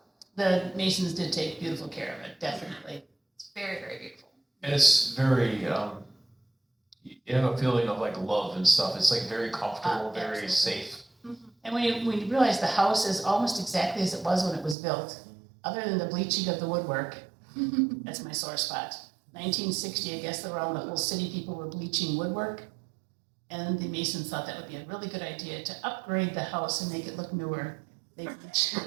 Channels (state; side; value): drops out; left; at 14.8 s